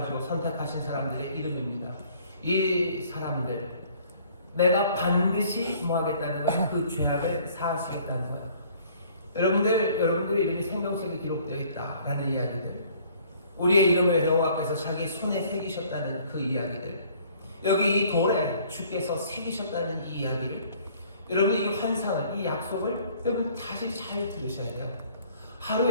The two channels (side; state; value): both; inverted; correlation -0.56